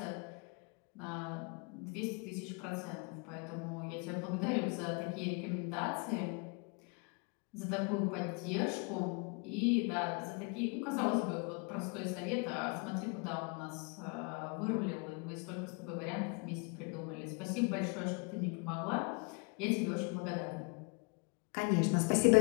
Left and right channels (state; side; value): quieter; right; 32.6 dB